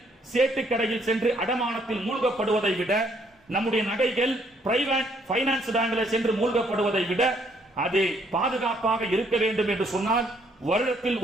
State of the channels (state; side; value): normal; both; correlation 0.68